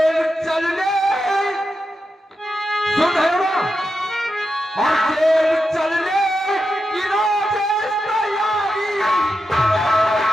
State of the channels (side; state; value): both; normal; correlation 0.88